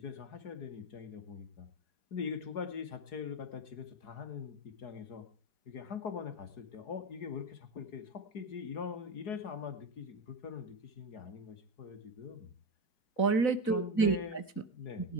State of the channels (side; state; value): right; late; 4.0 ms